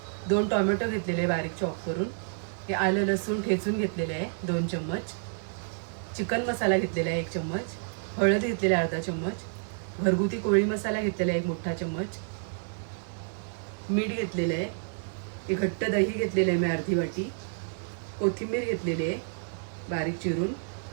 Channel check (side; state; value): left; silent; 58 dB below the other